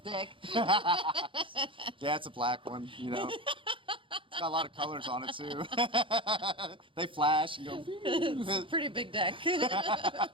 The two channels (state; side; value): late; left; 0.25 ms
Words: Yeah, it's a black one. It's got a lot of colors on it too. They flash and go. It's a pretty big deck. Man,